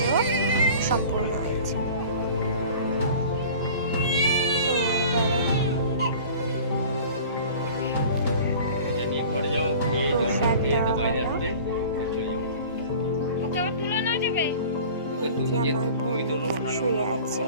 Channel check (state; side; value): inverted; both; correlation -0.43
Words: সম্পূর্ণ হয়েছে। আমার বোন শুয়ে আছে,